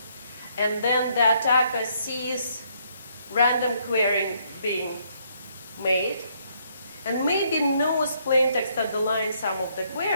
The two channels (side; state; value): both; inverted; correlation -0.70